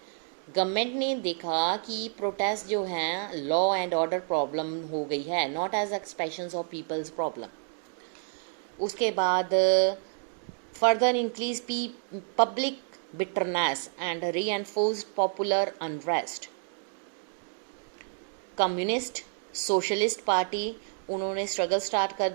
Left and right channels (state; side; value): silent; left; 58 dB below the other